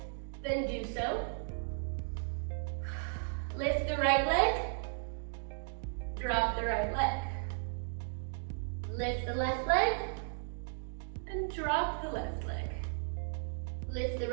then do so. Lift the right leg, drop the right leg. Lift the left leg, and drop the left leg. Lift the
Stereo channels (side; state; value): left; silent; digital silence